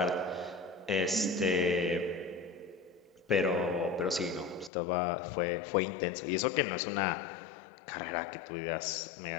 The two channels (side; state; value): right; drops out; at 4.7 s